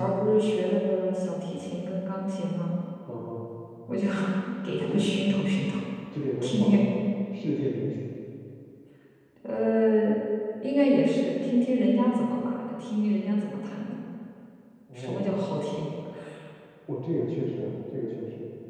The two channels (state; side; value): identical; both; correlation 1.00